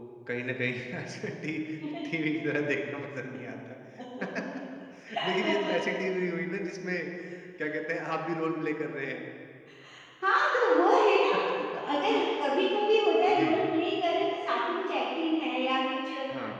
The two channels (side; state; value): both; identical; correlation 1.00